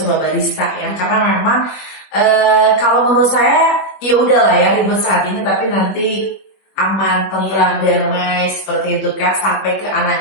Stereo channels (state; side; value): late; right; 21 ms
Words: barista ya, karena memang kalau menurut saya ya udahlah ya ribet saat ini, tapi nanti aman, tentram, damai seperti itu kan, sampai ke